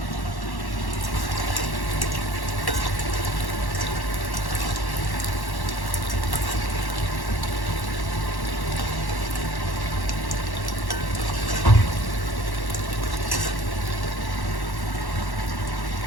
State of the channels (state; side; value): late; right; 1.1 ms